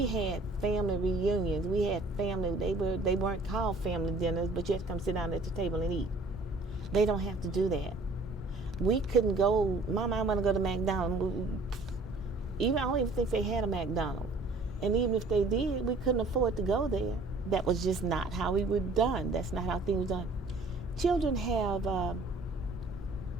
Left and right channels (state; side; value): quieter; left; 3.1 dB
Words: had family reunions. We had family, they weren't called family dinners, but you had to come sit down at the table and eat. They don't have to do that. We couldn't go, Mama, I want to go to McDonald's. I don't even think they had a McDonald's. And even if they did, we couldn't afford to go there that was just not how we were done. That's not how things were done. Children have